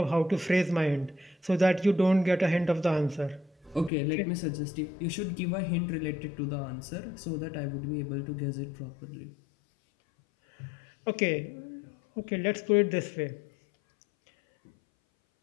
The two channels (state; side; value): drops out; right; at 3.9 s